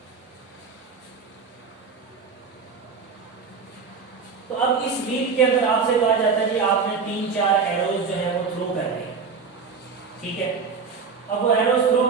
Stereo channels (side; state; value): left; quieter; 5.4 dB